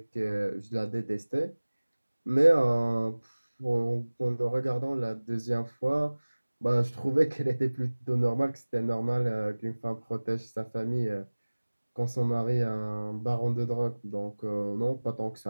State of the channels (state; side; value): inverted; both; correlation -1.00